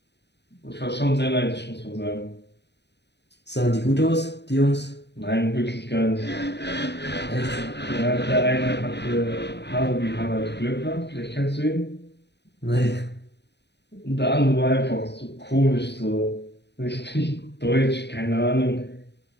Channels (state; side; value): late; right; 0.50 ms